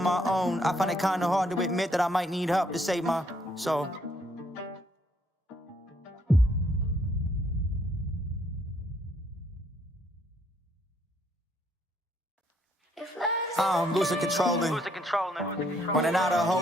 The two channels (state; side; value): normal; both; correlation 0.69